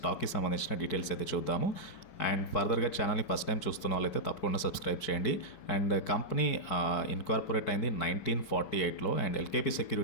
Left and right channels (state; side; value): late; right; 5.1 ms